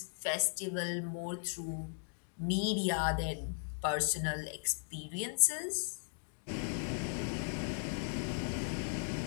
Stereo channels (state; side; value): silent; right; digital silence